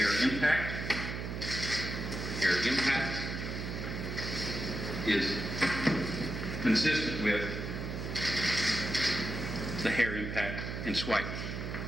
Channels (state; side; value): noise; right; hum, 5 dB below the sound